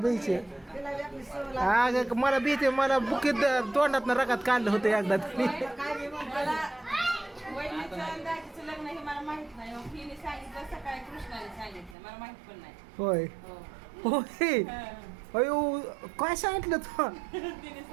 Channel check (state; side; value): drops out; left; at 12.0 s